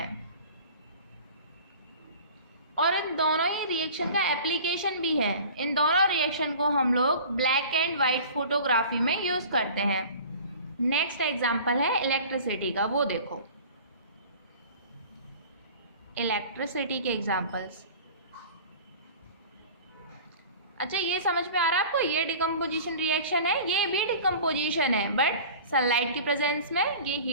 और इन दोनों ही रिएक्शन का एप्लीकेशन भी है। इन दोनों रिएक्शन को हम लोग ब्लैक एंड वाइट फोटोग्राफी में यूज करते हैं। नेक्स्ट एग्जांपल है इलेक्ट्रिसिटी का, वो देखो इलेक्ट्रिसिटी के एग्जांपल्स। अच्छा, ये समझ में आ रहा है आपको, ये डिकम्पोजिशन रिएक्शन है, ये भी डिकम्पोजिशन है, बट सनलाइट की प्रेजेंस में, ये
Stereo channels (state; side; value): inverted; both; correlation -0.41